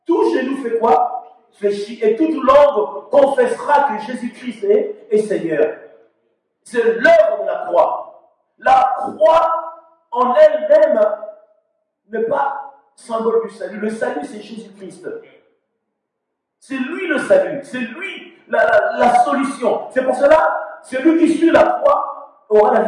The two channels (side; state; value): both; identical; correlation 1.00